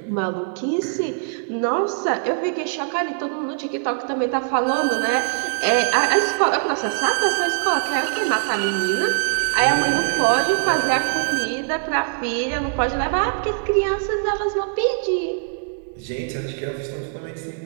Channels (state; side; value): silent; left; digital silence